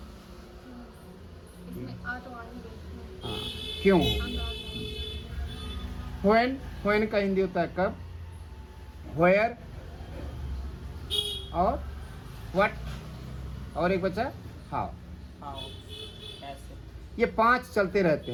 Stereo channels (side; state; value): both; identical; correlation 1.00